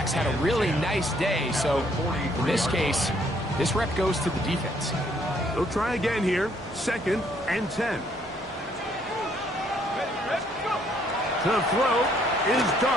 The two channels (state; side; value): normal; both; correlation 0.67